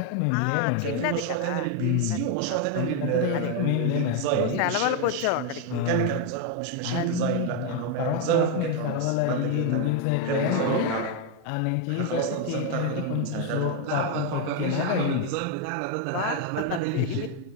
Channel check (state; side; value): different; both; correlation 0.01